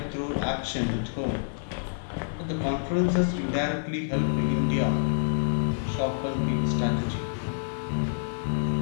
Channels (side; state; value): right; silent; digital silence